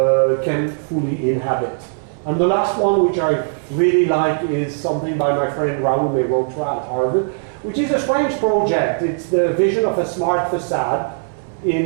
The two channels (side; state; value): left; silent; 63 dB below the other